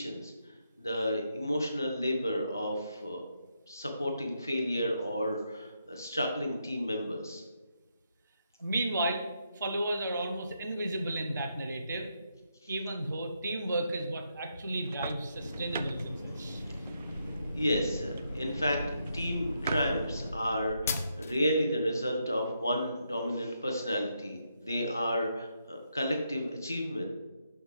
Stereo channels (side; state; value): both; inverted; correlation -0.80